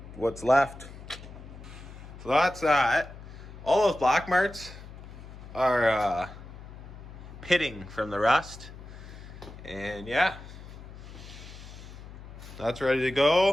What's left. So that's that. All those black marks are pitting from the rust. And yeah, that's ready to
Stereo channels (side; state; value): left; noise; hum, 15 dB below the sound